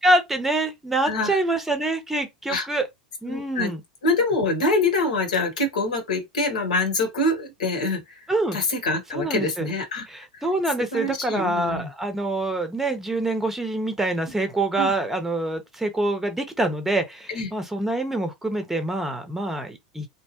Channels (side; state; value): both; normal; correlation 0.44